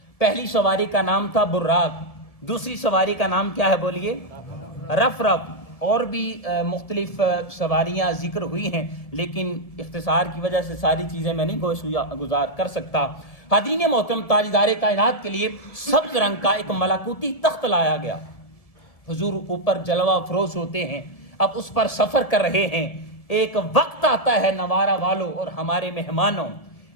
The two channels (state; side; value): late; right; 1.7 ms